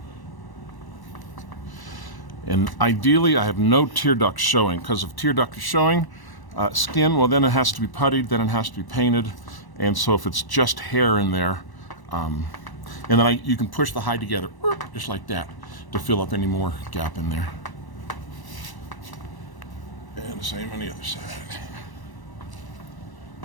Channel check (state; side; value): late; right; 1.0 ms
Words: And ideally, I have no tear duct showing, because if tear duct is showing, skin, well, then it has to be puttied, then it has to be painted. And so if it's just hair in there, and then you can push the hide together, just like that, to fill up any more gap in there. And the same on the other side.